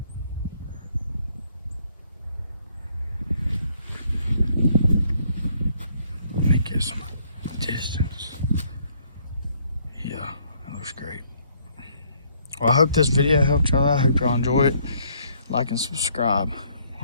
Let me get some distance. Yeah, that looks great. Well, I hope this video helped y'all out. I hope y'all enjoy it. Like and subscribe.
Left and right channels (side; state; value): both; inverted; correlation -0.65